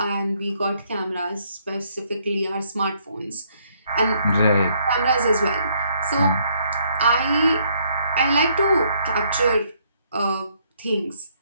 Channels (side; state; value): both; inverted; correlation -0.69